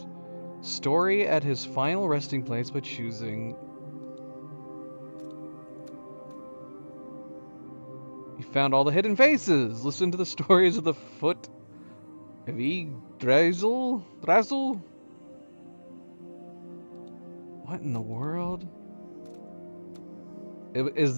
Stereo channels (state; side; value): inverted; both; correlation -1.00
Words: story at his final resting place by choosing. You found all the hidden faces. Listen to the stories of the foot of Yggdrasil. What in the world? Does